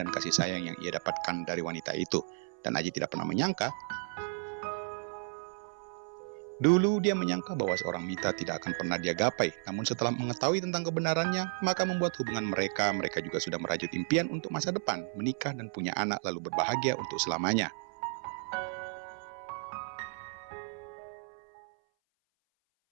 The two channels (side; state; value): left; silent; 56 dB below the other